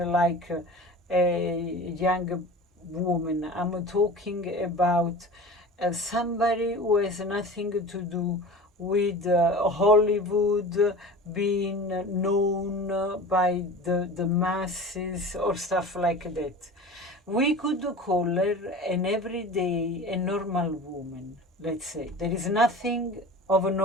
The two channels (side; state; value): both; normal; correlation 0.36